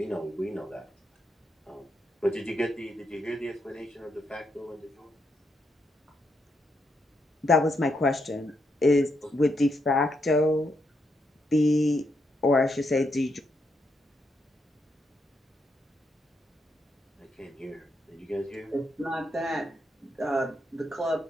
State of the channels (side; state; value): both; normal; correlation 0.80